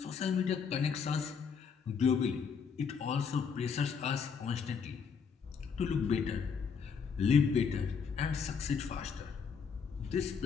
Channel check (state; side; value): quieter; right; 6.1 dB